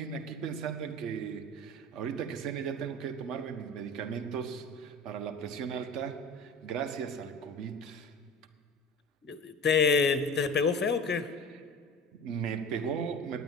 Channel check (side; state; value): both; normal; correlation 0.36